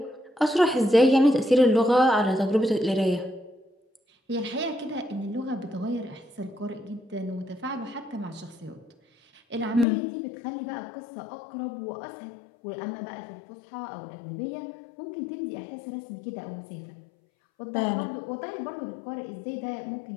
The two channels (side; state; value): right; drops out; at 9.9 s